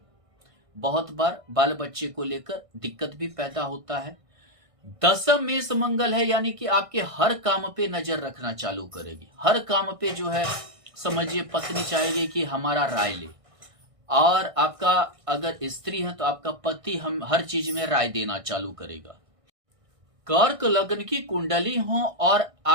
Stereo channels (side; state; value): left; late; 1.6 ms